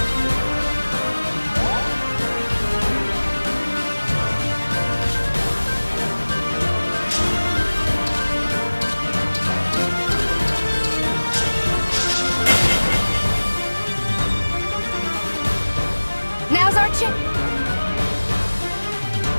Now's our chance.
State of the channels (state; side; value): inverted; both; correlation -1.00